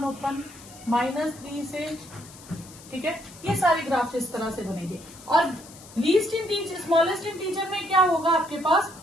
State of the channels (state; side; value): noise; left; hiss, 19 dB below the sound